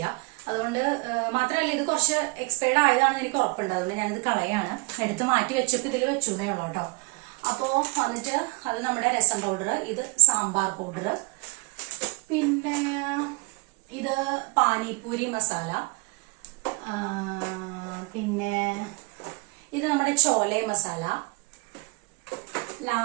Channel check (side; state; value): left; quieter; 29.2 dB